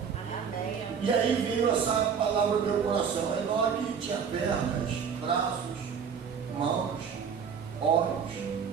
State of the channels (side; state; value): left; quieter; 6.8 dB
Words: E E aí veio essa palavra no meu coração. Enoque tinha pernas, braços, mãos, olhos,